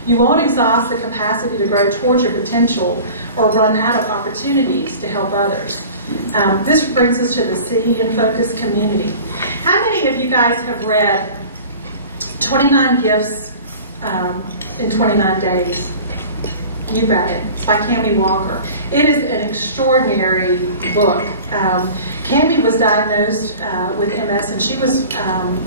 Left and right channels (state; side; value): inverted; both; correlation -0.41